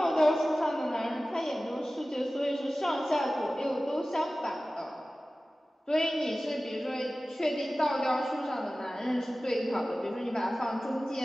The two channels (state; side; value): normal; both; correlation 0.96